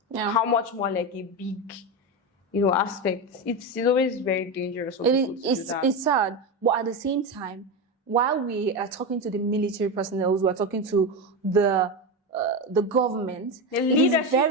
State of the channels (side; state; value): both; normal; correlation 0.16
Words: how much more like a big, aspect. It's always very dangerous for people to do that. It's sad, but at the same time, while we are talking to the military personnel, we are talking to the government, the